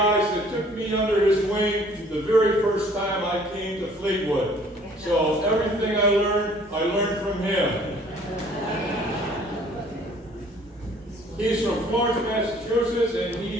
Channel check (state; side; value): normal; both; correlation 0.56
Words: that took me under his wing the very first time I came to Fleetwood. So everything I learned from him. He's from Florence, Massachusetts, and